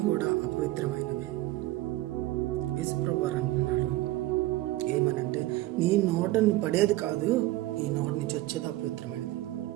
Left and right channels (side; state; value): left; quieter; 17.1 dB